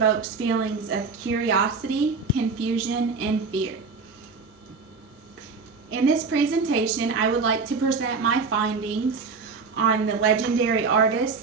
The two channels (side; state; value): left; quieter; 4.7 dB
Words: feelings of curiosity, confusion, and fear. In this presentation, I would like to present my findings on the legendary artist,